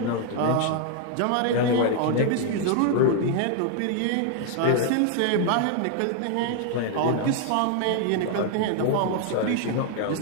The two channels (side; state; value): both; different; correlation 0.00